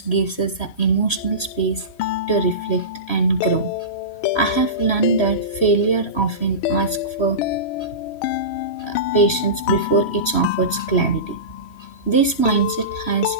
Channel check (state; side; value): late; right; 3.1 ms